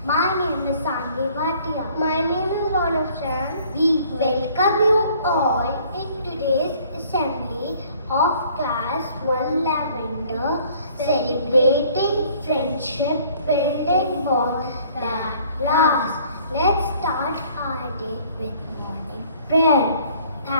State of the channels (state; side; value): inverted; both; correlation -0.57